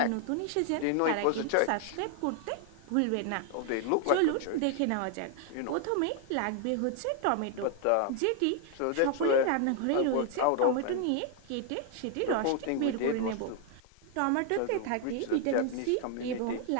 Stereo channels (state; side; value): different; both; correlation 0.00